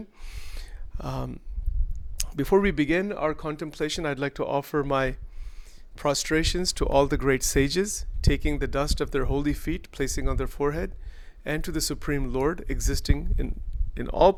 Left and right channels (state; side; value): identical; both; correlation 1.00